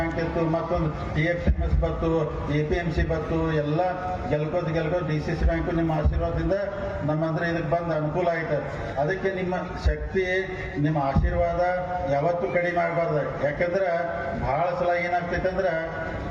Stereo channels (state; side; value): identical; both; correlation 1.00